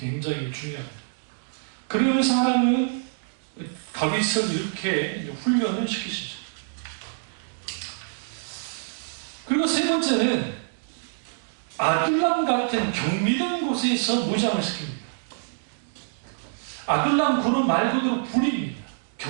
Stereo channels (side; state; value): left; silent; digital silence